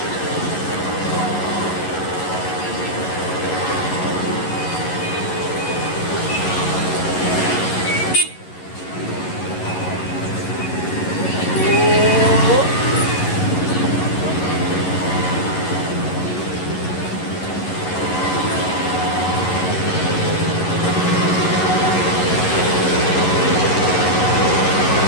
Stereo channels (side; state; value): right; late; 11 ms